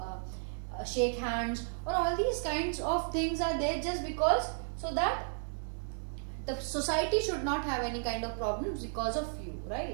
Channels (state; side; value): silent; left; digital silence